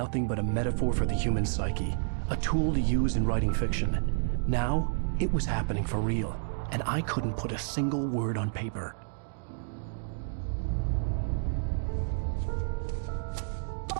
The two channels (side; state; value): left; silent; digital silence